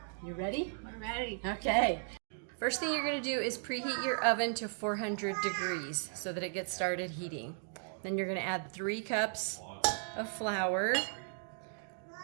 you ready? We're ready. Okay. First thing you're going to do is preheat your oven to 400 degrees so that it gets started heating. Then you're going to add 3 cups of flour,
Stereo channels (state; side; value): silent; left; 54 dB below the other